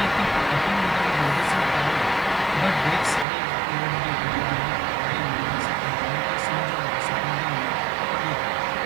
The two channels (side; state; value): left; drops out; at 3.2 s